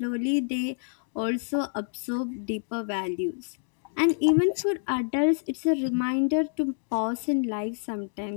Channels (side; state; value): right; silent; digital silence